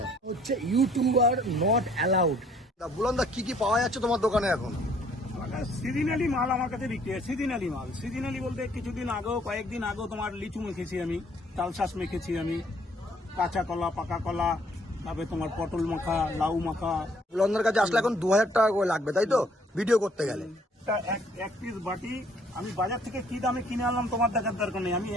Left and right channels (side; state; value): both; normal; correlation 0.62